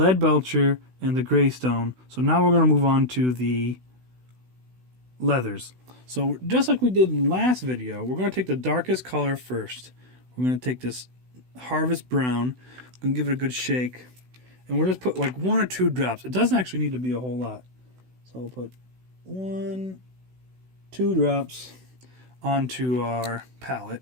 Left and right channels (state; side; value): late; left; 16 ms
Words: and the Greystone, so now we're going to move on to the leathers. So just like we did in the last video, we're going to take the darkest color first. We're going to take this Harvest Brown, we're going to give it a good shake, and we'll just put like 1 or 2 drops. It doesn't actually need to be a whole lot. So we'll put 1, 2 drops onto our